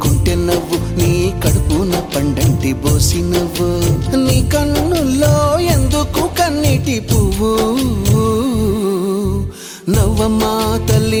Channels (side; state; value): both; identical; correlation 1.00